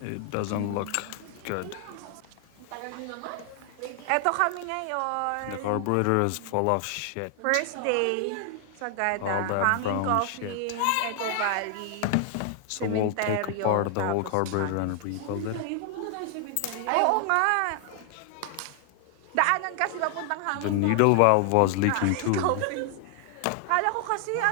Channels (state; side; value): different; both; correlation 0.00